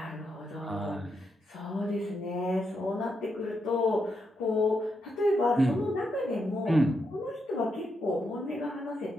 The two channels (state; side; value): normal; both; correlation 0.82